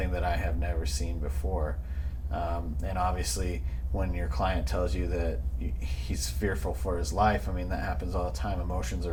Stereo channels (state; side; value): identical; both; correlation 1.00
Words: that I have never seen before. And obviously when your client tells you that he's fearful for his life, I mean, that happens all the time. Emotions